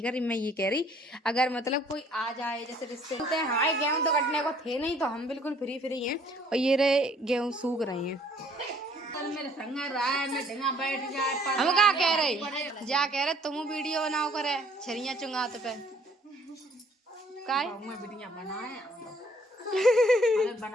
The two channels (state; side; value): normal; both; correlation 0.60